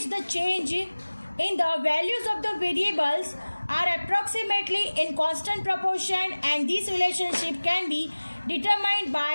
the change in the values of the variables are approximately in constant proportion, and this relationship can be determined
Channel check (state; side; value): inverted; both; correlation -1.00